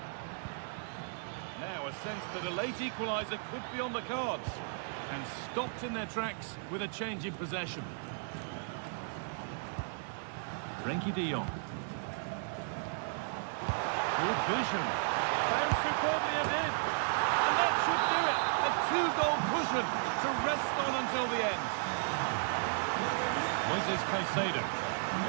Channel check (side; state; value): left; silent; digital silence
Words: Now a sense that a late equaliser could be on the cards. And stopped in their tracks with a change in possession. Frenkie de Jong. Good vision. Found superbly ahead. And that should do it. A two-goal cushion to rest on until the end. Moises Caicedo.